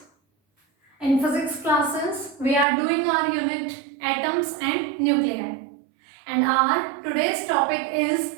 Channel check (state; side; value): drops out; left; at 2.7 s